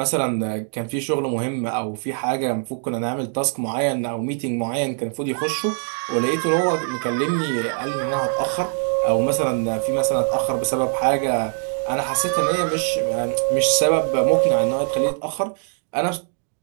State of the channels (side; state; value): left; silent; 58 dB below the other